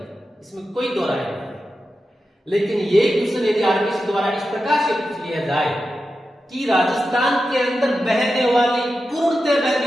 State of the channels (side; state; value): both; normal; correlation 0.91